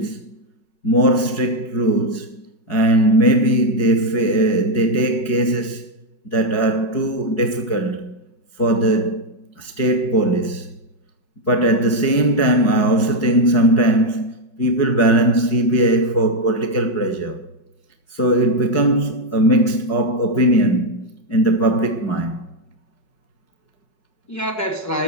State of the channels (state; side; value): late; right; 5.4 ms